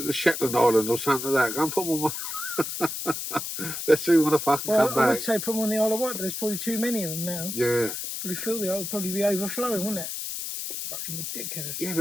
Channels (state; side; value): noise; left; hiss, 5 dB below the sound